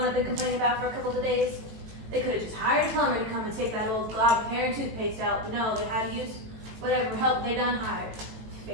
I've been complaining about for a couple of days? They could have just hired a plumber to come and take that old glob of hair and toothpaste out, but no, they had to use whatever help they done hired.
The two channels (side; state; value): left; late; 18 ms